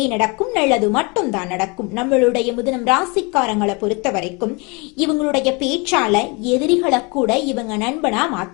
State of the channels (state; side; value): quieter; right; 29.4 dB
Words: நடக்கும், நல்லது மட்டும் தான் நடக்கும். நம்மளுடைய முதனம் ராசிக்காரங்களை பொறுத்த வரைக்கும் இவங்களுடைய பேச்சால எதிரிகளை கூட இவங்க நண்பனா